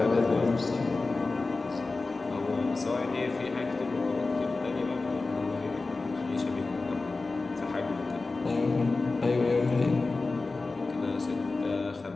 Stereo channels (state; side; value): quieter; right; 3.6 dB